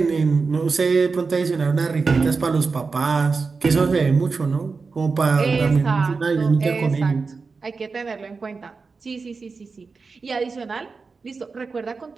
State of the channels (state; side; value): quieter; left; 4.5 dB